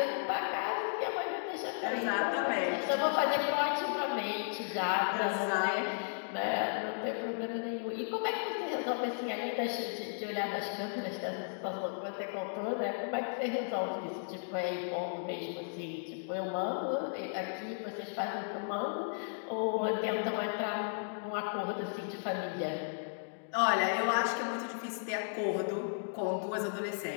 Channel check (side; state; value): right; silent; digital silence